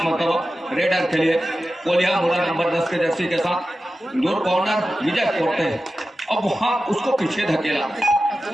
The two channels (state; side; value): normal; both; correlation 0.94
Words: मतलब रेडर के लिए। कोल्हापुरा नंबर 10 के जर्सी के साथ दूर कॉर्नर विजय पोटे, अब वहां उसको पीछे धकेला,